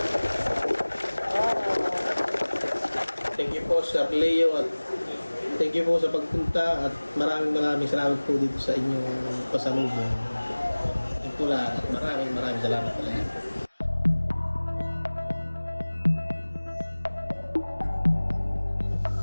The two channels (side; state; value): both; inverted; correlation -1.00